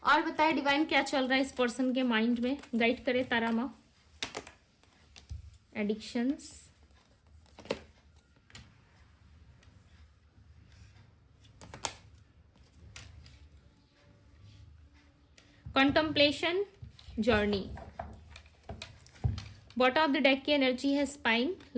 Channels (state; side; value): identical; both; correlation 1.00